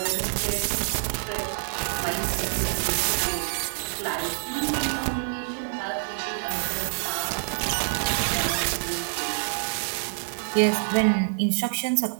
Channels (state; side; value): silent; left; 60 dB below the other